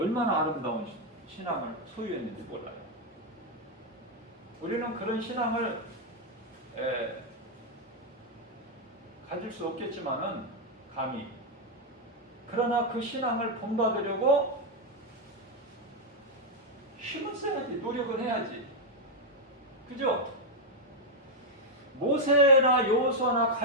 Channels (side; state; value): both; normal; correlation 0.00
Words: 아름다운 신앙을 소유했는지 몰라요. 우리는 그런 신앙을 가질 수 없겠지만은 감히, 그러나 그 신앙을 본받으려고 힘을 써야지, 노력은 해야지. 그죠? 모세나 여호수아나